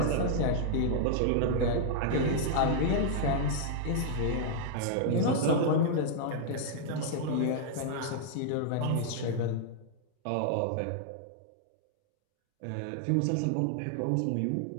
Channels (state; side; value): different; both; correlation -0.01